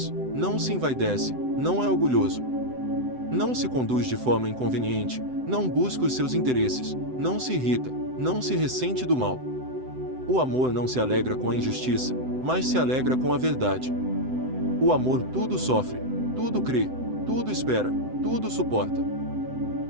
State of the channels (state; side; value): late; left; 7.8 ms